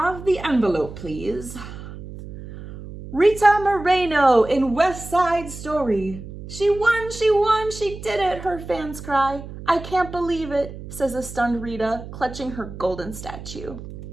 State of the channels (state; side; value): noise; right; hum, 12 dB below the sound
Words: the envelope, please? Rita Moreno in West Side Story. She won, she did it, her fans cry. I can't believe it, says a stunned Rita, clutching her golden statue.